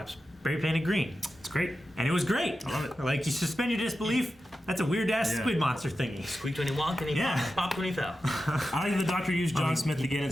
spray painted green. It's great, and it was great. I love it. Like you suspend your disbelief. That's a weird ass squid monster thingy. Squeaked when he walked and he popped when he fell. I like the Doctor used John Smith again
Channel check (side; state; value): both; normal; correlation 0.92